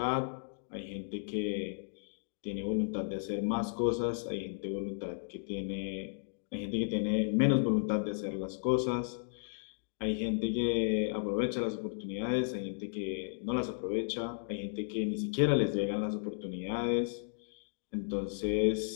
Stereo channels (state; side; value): silent; right; digital silence